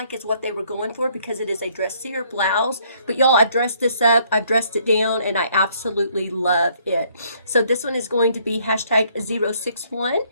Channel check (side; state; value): both; inverted; correlation -0.66